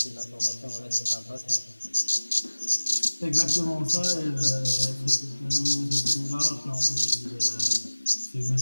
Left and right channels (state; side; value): inverted; both; correlation -1.00